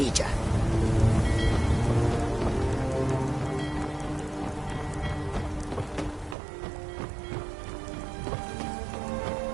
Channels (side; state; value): left; drops out; at 6.4 s